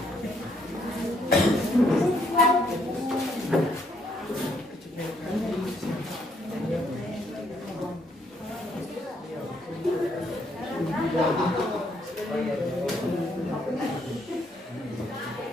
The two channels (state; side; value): normal; both; correlation 0.71